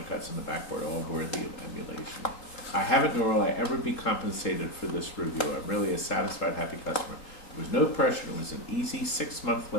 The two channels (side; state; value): right; late; 3.7 ms